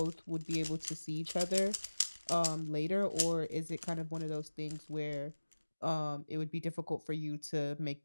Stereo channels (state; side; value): inverted; both; correlation -1.00